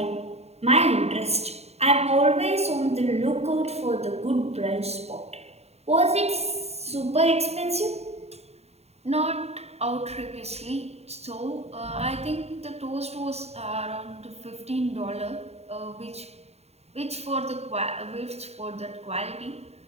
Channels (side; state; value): left; late; 0.31 ms